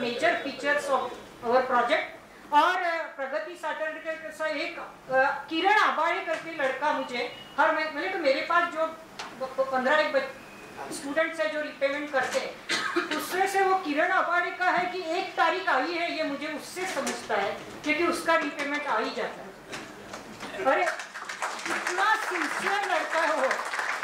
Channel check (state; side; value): identical; both; correlation 1.00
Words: features of our project. और प्रगति सैटरडे का एक किरण आबाड़े करके लड़का मुझे हर महीने, तो मेरे पास जो 15 स्टूडेंट्स है जो रिपेमेंट करते हैं, उसमें से वो किरण आबाड़े का है कि 1 तारीख आई है, ये मुझे उससे समझता है क्योंकि उसका रिपेमेंट आ ही जाता है। अरे इतना सिंसियर लड़का है वो।